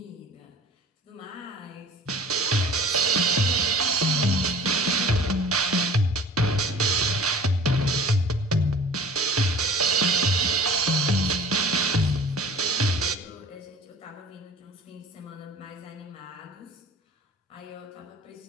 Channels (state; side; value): normal; both; correlation 0.45